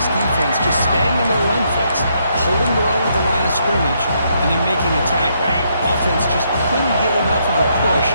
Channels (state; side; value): inverted; both; correlation -0.74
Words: defense, just staying in their run fits, holding their own at the line of scrimmage, and then making a tackle. Offense just couldn't get enough of a push